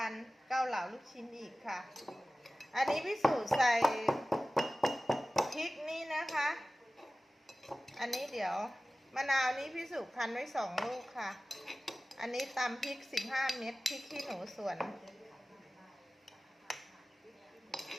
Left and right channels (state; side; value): normal; both; correlation 0.97